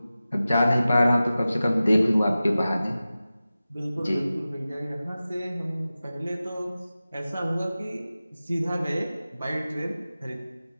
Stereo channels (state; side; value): inverted; both; correlation -0.95